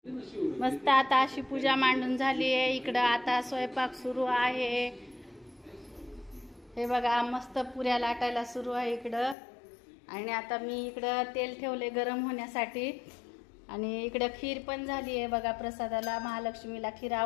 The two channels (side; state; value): right; drops out; at 9.3 s